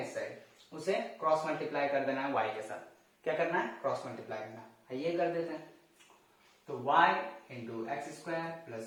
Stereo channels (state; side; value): identical; both; correlation 1.00